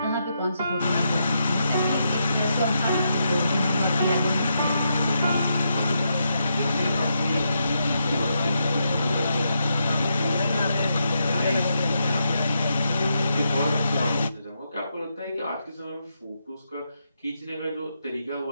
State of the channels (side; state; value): both; inverted; correlation -0.82